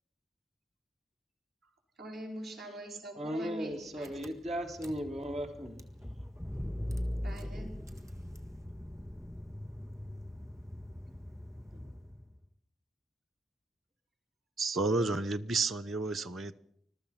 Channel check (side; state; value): both; normal; correlation 0.76